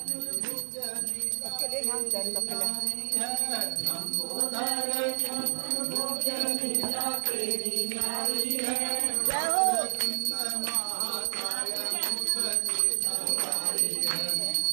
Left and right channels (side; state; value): left; silent; digital silence